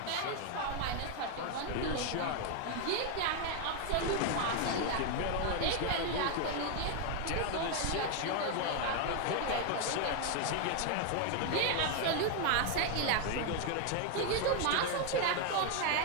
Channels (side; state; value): both; different; correlation 0.00